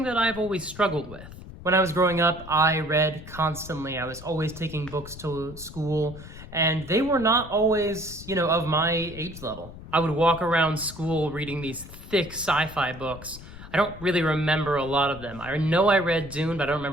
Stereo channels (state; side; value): noise; left; rumble, 15 dB below the sound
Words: that I've always struggled with. When I was growing up, I read constantly. I was always taking books to school, and they were not always, of my age level. I would walk around school reading these thick sci-fi books. I don't really remember a lot of them. I know I read Dune, but I don't